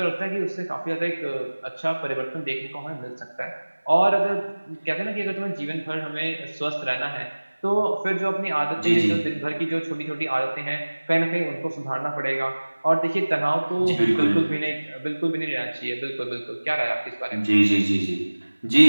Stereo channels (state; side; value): inverted; both; correlation -1.00